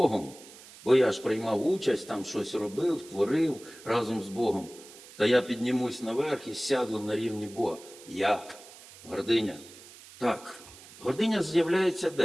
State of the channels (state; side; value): noise; right; hiss, 19 dB below the sound